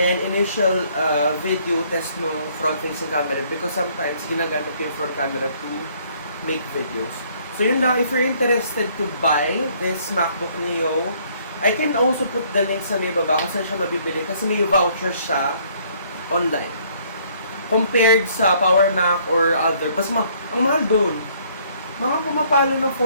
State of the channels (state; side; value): inverted; both; correlation -0.63